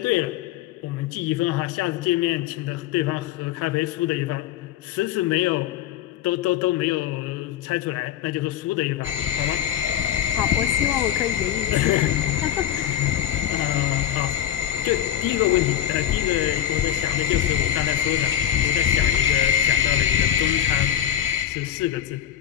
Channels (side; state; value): right; quieter; 10.9 dB